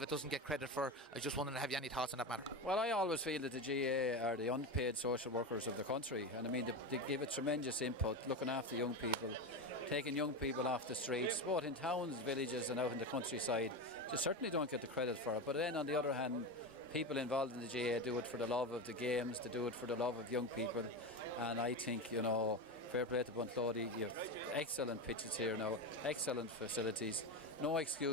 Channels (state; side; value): normal; both; correlation 0.19